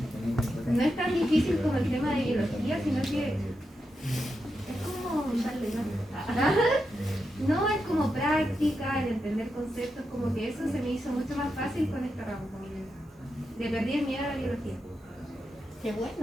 no es tan difícil como el tema de biología, sino que es como no es como práctica, el entender conceptos, como que eso se me hizo mucho más fácil con este ramo, como que le perdí el miedo a la biología. Qué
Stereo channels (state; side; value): normal; both; correlation 0.87